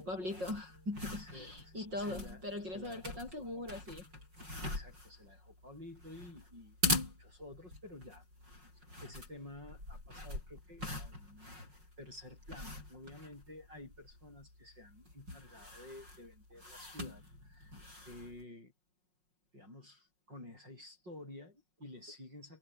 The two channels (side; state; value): left; late; 5.5 ms